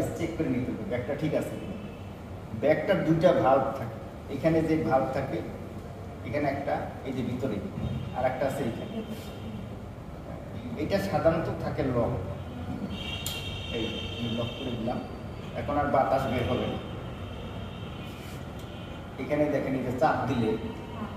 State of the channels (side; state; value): both; identical; correlation 1.00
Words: চেক করে নিতে হবে ব্যাগটা ঠিক আছে কিনা। ব্যাগটার 2টা ভাল্ব থাকে, এখানে যে ভাল্ব থাকে এখানে একটা, এই যে ভিতরে আর একটা আছে এইখানে, এটা সাধারণত থাকে লক, এই লক করে দিলাম, এখন আর বাতাস বের হবে না। এখানে দেখেন এই যে চাপ দিলে